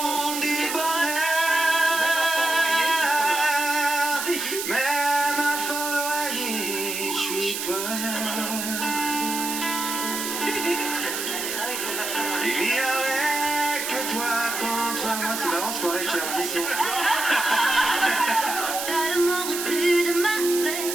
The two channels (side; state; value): right; noise; hiss, 4 dB below the sound